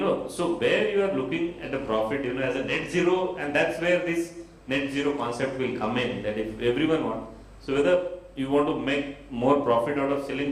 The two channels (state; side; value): identical; both; correlation 1.00